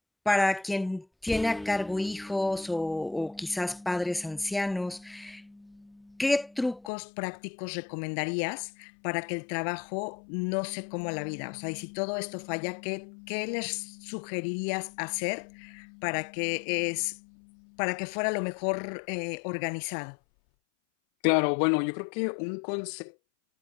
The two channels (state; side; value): drops out; right; at 6.9 s